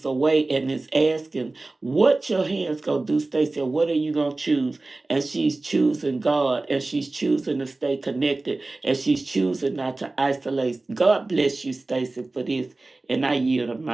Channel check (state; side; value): quieter; left; 3.2 dB